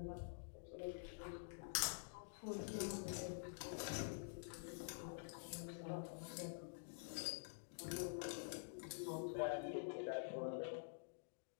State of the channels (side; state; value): right; silent; digital silence